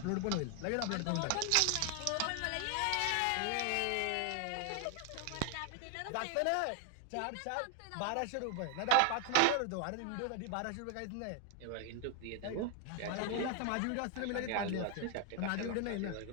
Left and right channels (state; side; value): different; both; correlation 0.00